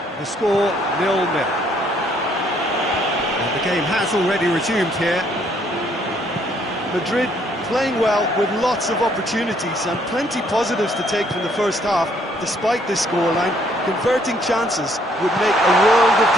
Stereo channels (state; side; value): normal; both; correlation 0.66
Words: The score 0-0. And the game has already resumed here. Madrid playing well with lots of opportunities and plenty positives to take from the first half. Despite this scoreline, converting chances would make a world of